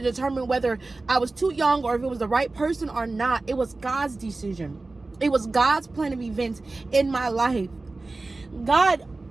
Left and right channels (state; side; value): quieter; left; 3.3 dB